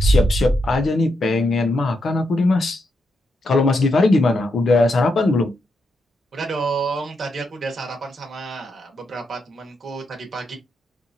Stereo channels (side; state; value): both; normal; correlation 0.83